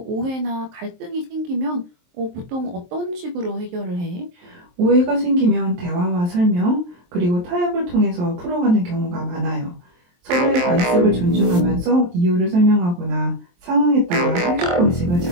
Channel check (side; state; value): left; late; 23 ms